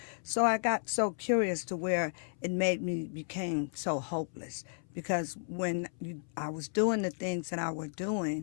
So I got so curious to where it made me became so hopeless because I was doing the things that I was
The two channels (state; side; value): silent; right; 55 dB below the other